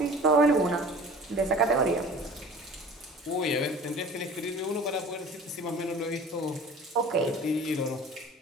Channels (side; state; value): both; normal; correlation 0.44